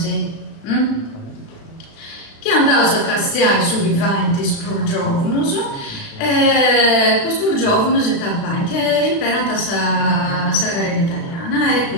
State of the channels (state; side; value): late; right; 36 ms